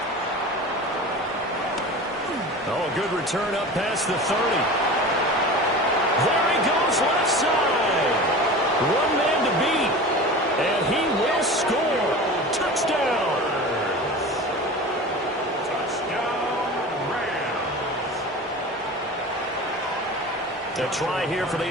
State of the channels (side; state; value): both; normal; correlation 0.34